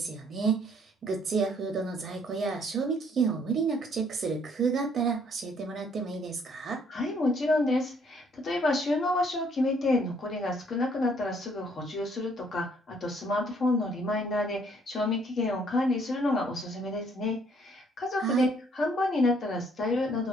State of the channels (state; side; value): normal; both; correlation 0.64